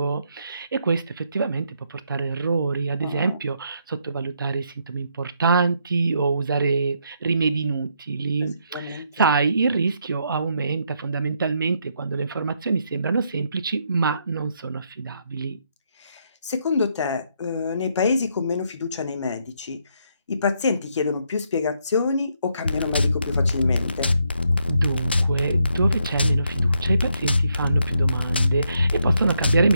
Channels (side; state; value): both; inverted; correlation -0.76